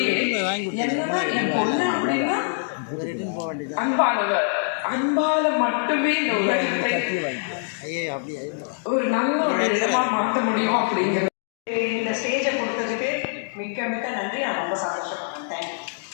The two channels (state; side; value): silent; right; digital silence